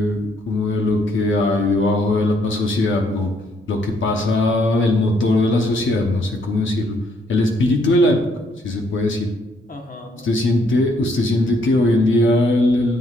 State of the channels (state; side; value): normal; both; correlation 0.70